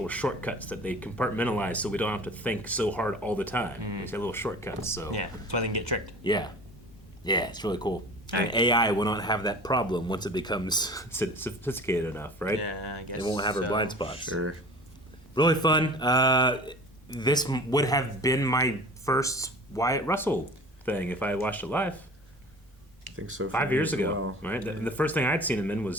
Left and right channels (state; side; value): normal; both; correlation 0.41